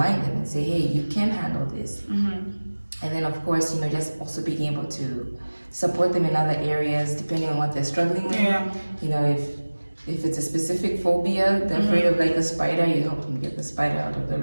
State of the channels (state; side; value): inverted; both; correlation -1.00